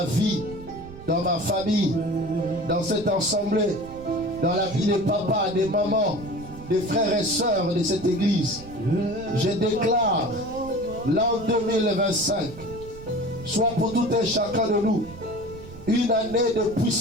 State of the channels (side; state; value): right; noise; rumble, 16 dB below the sound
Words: vie, dans ma famille, dans cette assemblée, dans la vie des papas, des mamans, des frères et sœurs de cette église, je déclare l'an 2025 soit pour tout un chacun de nous une année de